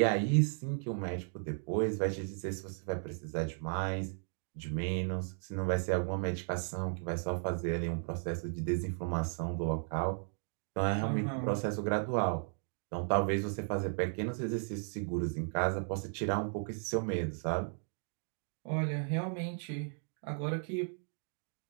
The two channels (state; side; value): silent; left; 54 dB below the other